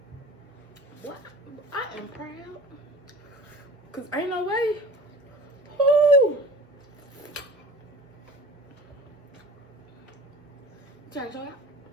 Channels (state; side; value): normal; both; correlation 0.38